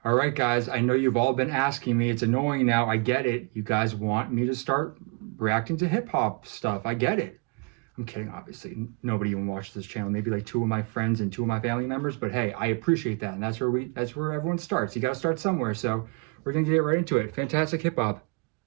All right, guys, I know you've all been asking me. It's annoying now. I get it. You guys want me to start reacting to hip hop stuff. I get it. I'm kidding, obviously. Nobody even watches this channel. Maybe like two of my friends and two of my family members. But hey, I appreciate that. And that's where everyone starts. You gotta start somewhere. So we're gonna get right into it. Fantastic hip hop.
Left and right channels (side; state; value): left; quieter; 32.3 dB